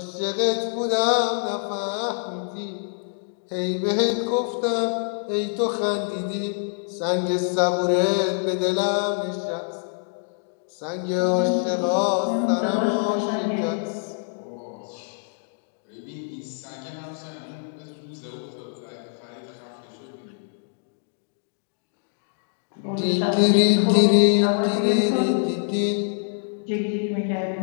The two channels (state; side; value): silent; right; digital silence